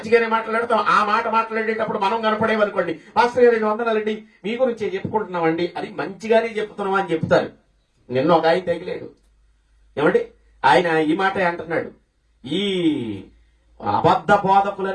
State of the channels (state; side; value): identical; both; correlation 1.00